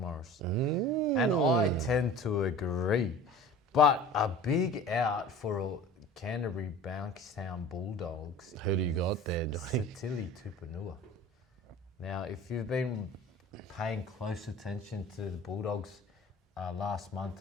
And I tend to agree. But a big out for Canterbury Bankstown Bulldogs. Who do you got there, Johnny? Sitili Tupanua. Now, if you've been paying close attention to the Bulldogs last month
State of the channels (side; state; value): both; normal; correlation 0.41